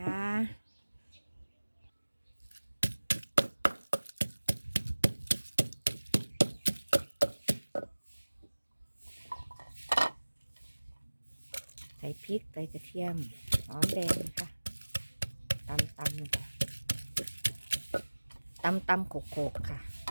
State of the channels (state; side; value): inverted; both; correlation -1.00